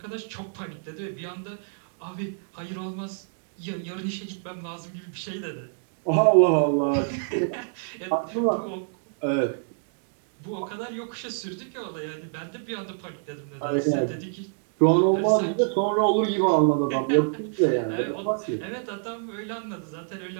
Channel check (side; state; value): left; silent; digital silence